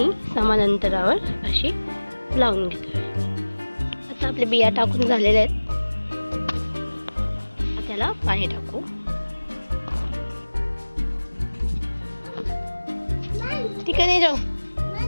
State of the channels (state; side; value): inverted; both; correlation -1.00